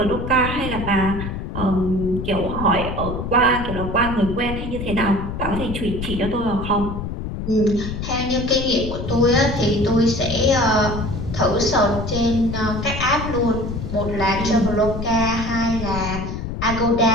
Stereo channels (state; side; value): noise; left; rumble, 6 dB below the sound